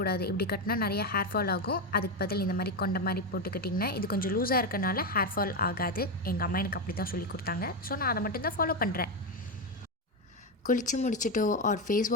இப்படி கட்டினா நிறைய ஹேர் ஃபால் ஆகும். அதுக்கு பதில் இந்த மாதிரி கொண்ட மாதிரி போட்டுக்கிட்டிங்கன்னா இது கொஞ்சம் லூஸாக இருக்கனால ஹேர் ஃபால் ஆகாது. எங்கள் அம்மா எனக்கு அப்படி தான் சொல்லி கொடுத்தாங்க. ஸோ நான் அதை மட்டும்தான் ஃபாலோ பண்ணுறேன். குளித்து முடிச்சுட்டோ ஆர் ஃபேஸ்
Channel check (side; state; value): both; normal; correlation 0.11